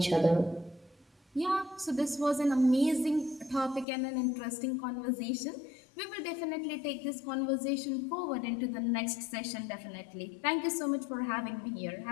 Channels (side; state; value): right; drops out; at 3.9 s